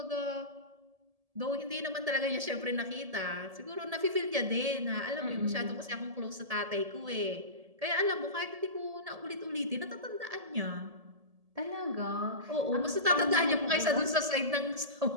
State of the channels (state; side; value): late; left; 1.7 ms